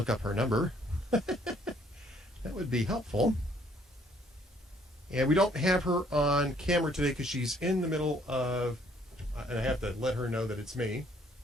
up her number. That would be helpful. And we don't have her on camera today because she's in the middle of, and I have to let her know that it's me.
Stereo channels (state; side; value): normal; both; correlation 0.63